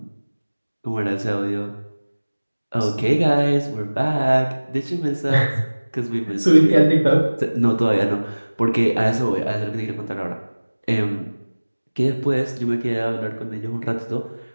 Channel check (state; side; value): inverted; both; correlation -1.00